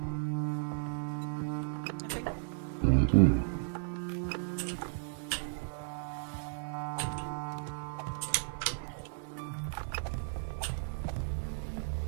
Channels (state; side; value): silent; left; digital silence